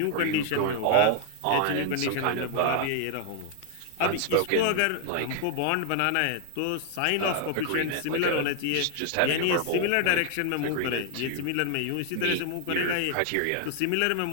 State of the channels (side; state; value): both; different; correlation 0.00